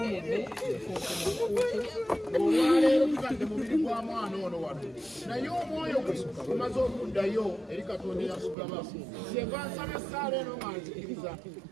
olwaleero tutadde mubiri gwa mwana ono wano naye omwoyo gwe gumaze okuddayo eri Katonda eyagugaba kyenva nsaba essaala eno nga nzikiriza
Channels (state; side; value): drops out; left; at 8.6 s